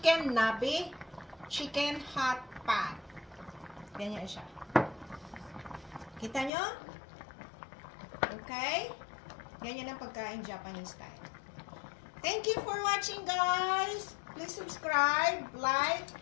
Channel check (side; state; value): right; drops out; at 6.5 s